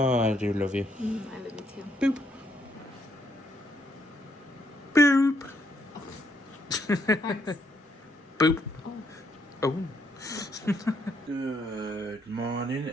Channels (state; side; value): normal; both; correlation 0.73